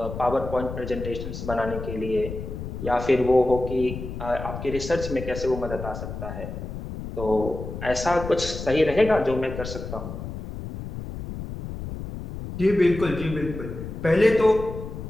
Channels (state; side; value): noise; left; rumble, 8 dB below the sound